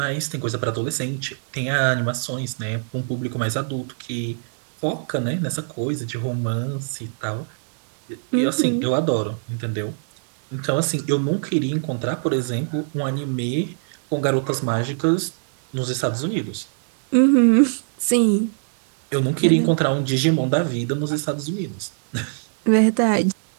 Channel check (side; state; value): left; silent; digital silence